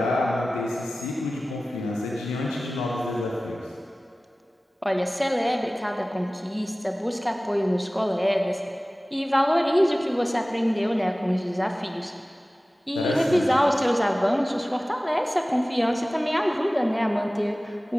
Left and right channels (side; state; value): both; normal; correlation 0.97